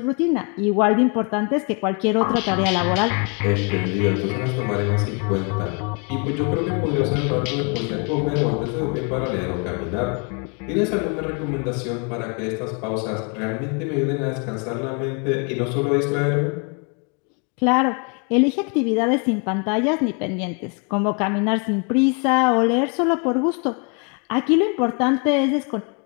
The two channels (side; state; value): right; quieter; 35.6 dB